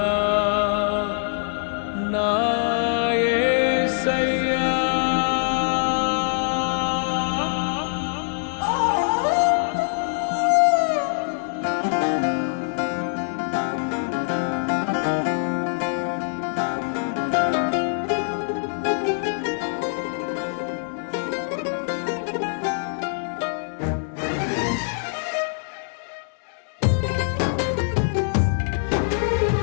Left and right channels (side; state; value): right; silent; digital silence